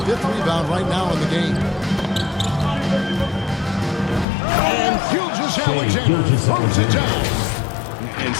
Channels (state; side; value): drops out; right; at 4.2 s